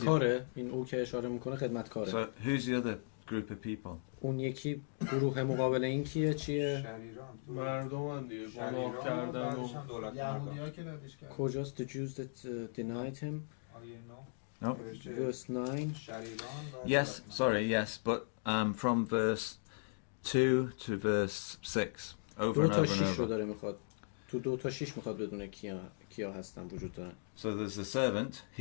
این او که اشاره میکنه خدمتکاره. So who's the other group of people? اون یکی گروه مقابل این کیه چیه؟ مردم دیگه گناه کردن و یهودی‌ها که ردش کردن. کجاست the Jews that denied him? No. Verse 9. Yes, sorry, yes, but from verse 2 to verse 6, over 2 and تا over and 6 رو over. داره میخواد. تو 2 تا 6 میخواد بدونه کیا هستن وجود دارن. So there's the servant,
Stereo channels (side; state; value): right; silent; digital silence